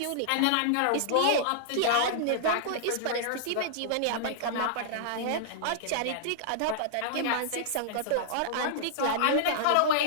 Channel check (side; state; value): both; different; correlation -0.01